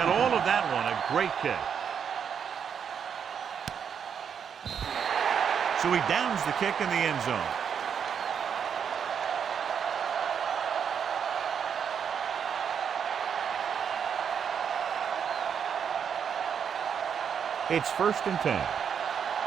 all of that one, a great kick. So he downs the kick in the end zone. It's 1st and 10.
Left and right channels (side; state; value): left; quieter; 7.5 dB